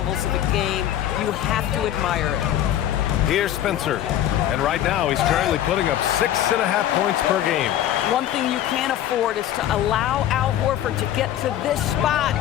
of the game. You have to admire it. Here's Spencer, and right now he's currently putting up 6.5 points per game. One thing you can't afford is to allow Al Horford to get to this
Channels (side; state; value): right; quieter; 11.8 dB